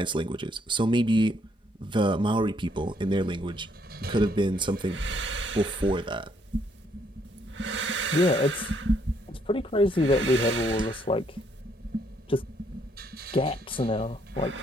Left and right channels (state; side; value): normal; both; correlation 0.70